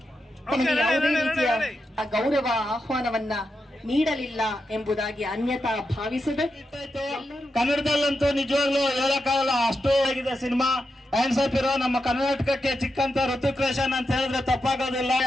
ಯಾವುದೇ ರೀತಿಯ ಗೌರವ ಆಹ್ವಾನವನ್ನ ನೀಡಲಿಲ್ಲ ಎಂಬುದಾಗಿ ಅನ್ಯತಾ ಭಾವಿಸದೆ, ಕನ್ನಡದಲ್ಲಂತೂ ನಿಜವಾಗ್ಲೂ ಹೇಳಕ್ಕಾಗಲ್ಲ, ಅಷ್ಟು ಆಗಿದೆ ಸಿನಿಮಾ. ಹ್ಯಾಂಡ್ಸ್ ಆಫ್ ಇರೋ ನಮ್ಮ ಕರ್ನಾಟಕಕ್ಕೆ ಚಿಕ್ಕಂತ ಋತಿಕ್ ರೋಷನ್ ಅಂತ ಹೇಳಿದ್ರೆ ತಪ್ಪಾಗೋದಿಲ್ಲ.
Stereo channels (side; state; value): both; normal; correlation 0.87